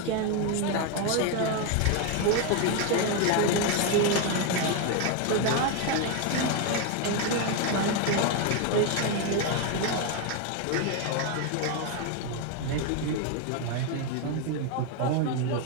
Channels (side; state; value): both; different; correlation 0.02